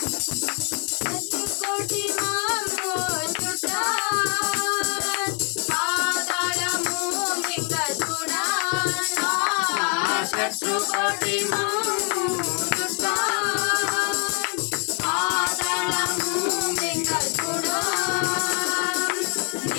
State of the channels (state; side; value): quieter; right; 39.2 dB